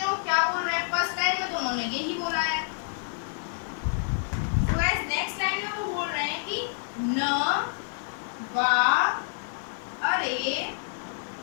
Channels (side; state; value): right; silent; 59 dB below the other